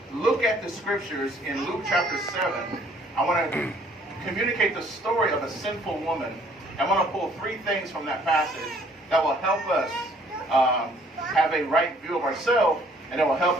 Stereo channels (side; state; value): both; normal; correlation 0.60